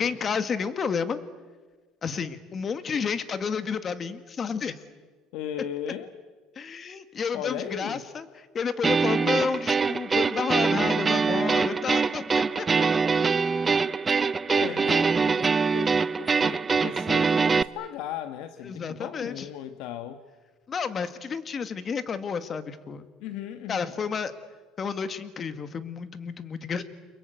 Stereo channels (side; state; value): both; normal; correlation 0.82